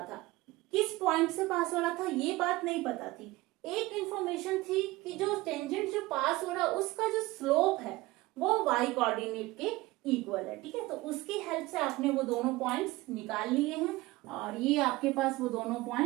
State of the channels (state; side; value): quieter; left; 20.0 dB